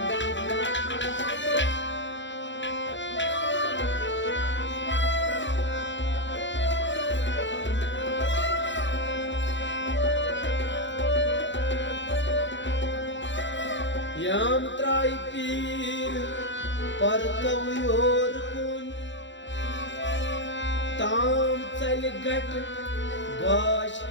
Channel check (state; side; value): late; right; 0.54 ms